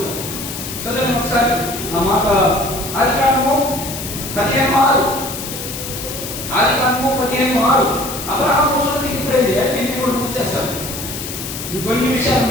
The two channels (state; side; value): noise; left; hiss, 8 dB below the sound